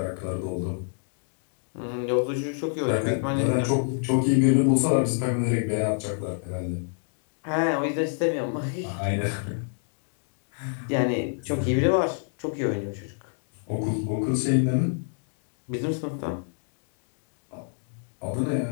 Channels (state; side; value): silent; right; digital silence